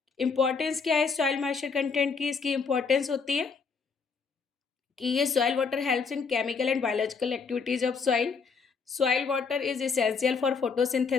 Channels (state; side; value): quieter; right; 5.3 dB